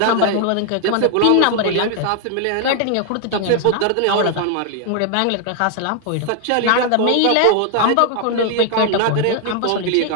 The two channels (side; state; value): both; different; correlation 0.00